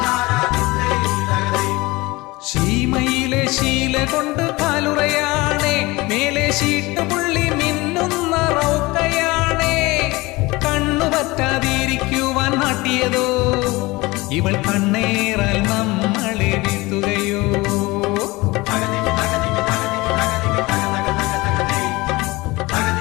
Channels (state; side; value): quieter; right; 22.1 dB